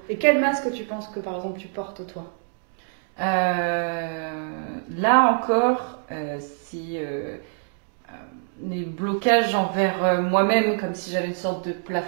Et quel masque tu penses que, par exemple, tu portes, toi? Là encore, si les blocages envers moi-même, comme si j'avais une sorte de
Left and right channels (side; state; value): left; silent; digital silence